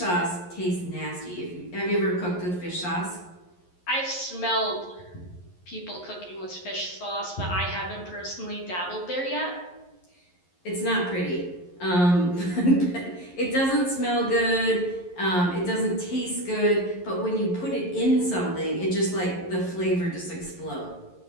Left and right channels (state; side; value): late; right; 11 ms